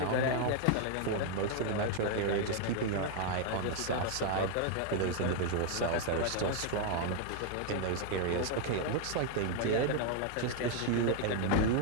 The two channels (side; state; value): both; different; correlation 0.00